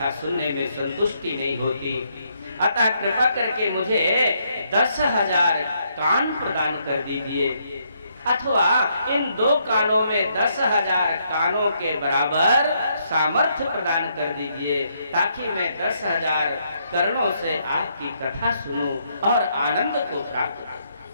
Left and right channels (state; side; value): inverted; both; correlation -0.74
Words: सुनने में संतुष्टि नहीं होती, अतः कृपा करके मुझे 10,000 कान प्रदान कर दीजिए, अथवा इन 2 कानों में 10,000 कानों के बराबर सामर्थ्य प्रदान कर दीजिए, ताकि मैं 10,000 कर्णों से आपकी कथा सुनूं और आनंद को प्राप्त करूं।